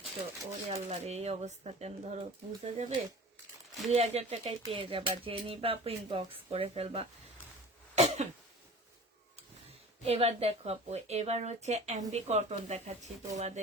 ওরে আল্লাহ রে, এই অবস্থা কেন, ধরো বুঝা যাবে। 2000 টাকায় পেয়ে যাবা। যে নিবা আপু ইনবক্স করে ফেলবা। এবার দেখো আপু, এবার হচ্ছে এমবি কটন দেখাচ্ছি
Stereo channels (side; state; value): both; normal; correlation 0.40